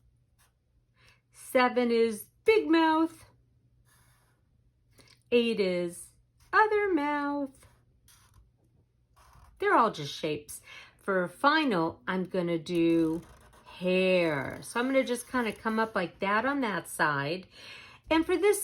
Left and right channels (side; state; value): both; identical; correlation 1.00